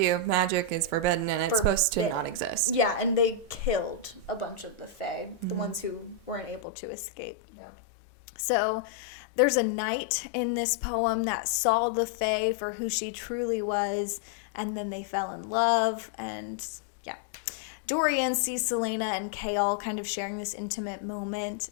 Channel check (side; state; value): right; drops out; at 6.6 s